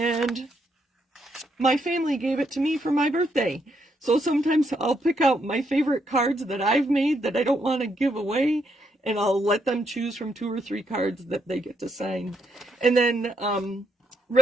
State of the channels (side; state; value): both; normal; correlation 0.77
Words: my family gave it to me for my birthday. So sometimes I'll pick out my favorite cards that I've made that I don't want to give away, and I'll let them choose from 2 or 3 cards that they get to sign. And then